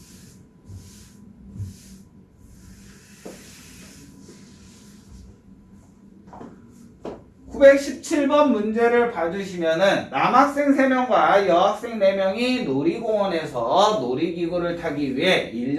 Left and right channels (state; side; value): identical; both; correlation 1.00